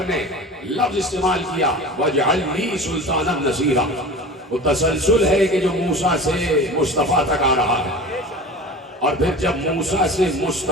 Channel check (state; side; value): normal; both; correlation 0.35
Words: ने लफ्ज इस्तेमाल किया वजअल ली सुल्तानन नसीरा। वो तसलसल है कि जो मूसा से मुस्तफ़ा तक आ रहा है, और फिर जब मूसा से